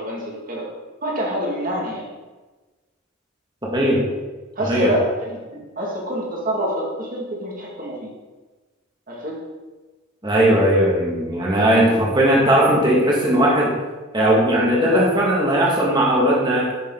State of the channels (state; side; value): normal; both; correlation 0.39